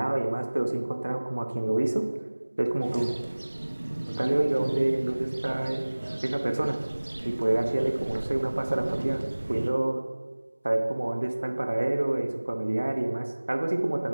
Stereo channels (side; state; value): both; inverted; correlation -1.00